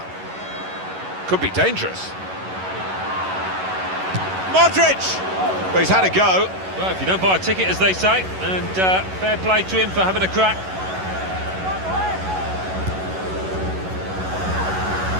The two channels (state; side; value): late; left; 11 ms